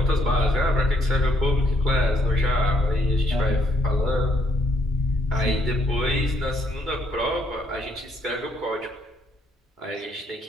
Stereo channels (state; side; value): normal; both; correlation 0.71